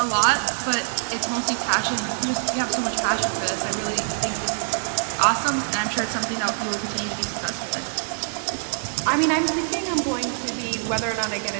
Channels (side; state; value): left; silent; 62 dB below the other